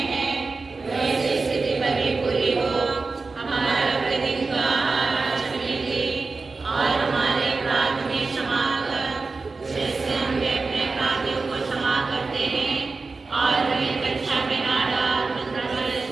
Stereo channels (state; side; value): quieter; left; 4.0 dB